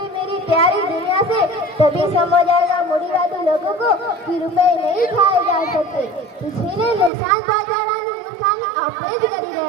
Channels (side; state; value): left; drops out; at 7.1 s